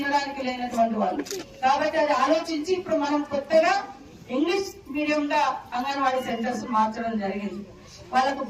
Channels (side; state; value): both; identical; correlation 1.00